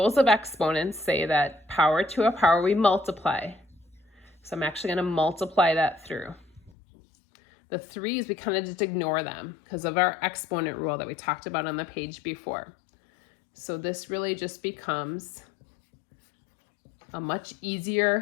of exponents say that power to a power we multiply. So I'm actually going to multiply that through. The 3's, we kind of just ignore them because of our exponent rule that we talked about on the page before. So this really just becomes a much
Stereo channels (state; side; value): drops out; right; at 6.7 s